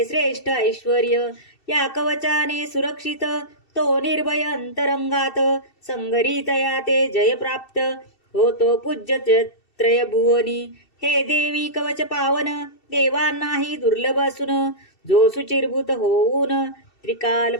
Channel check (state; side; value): late; right; 2.7 ms